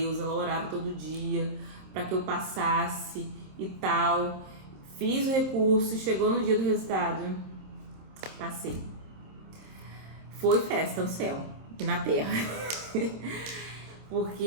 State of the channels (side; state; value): left; late; 26 ms